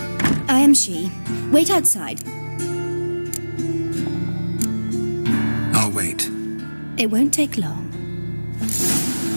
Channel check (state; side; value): inverted; both; correlation -1.00